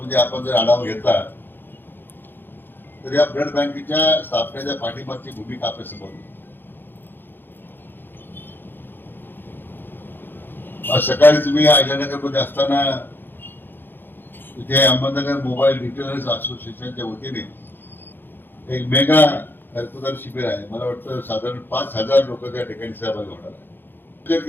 आपण जर आढावा घेतला तर या ब्लड बँकेच्या स्थापनेच्या पाठीमागची भूमिका आपल्या समोर. आज सकाळी तुम्ही अहिल्यानगरमध्ये असताना इथे अहमदनगर मोबाईल रिटेलर्स असोसिएशनच्या वतीने एक मेगा रक्तदान शिबिर आहे. मला वाटतं साधारण 5,000 लोक त्या ठिकाणी सहभागी होणार आहे. विचार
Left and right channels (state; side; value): late; right; 0.099 ms